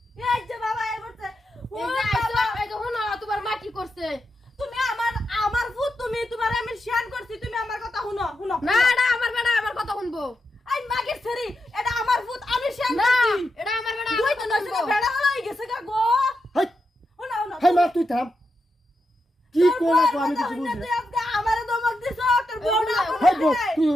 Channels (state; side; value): normal; both; correlation 0.86